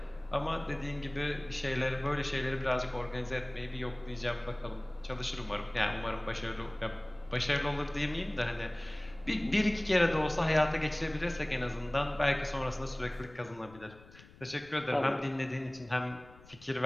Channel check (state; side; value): noise; left; rumble, 22 dB below the sound